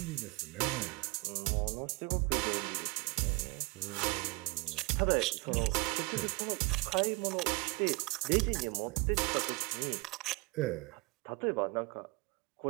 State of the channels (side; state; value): left; quieter; 26.6 dB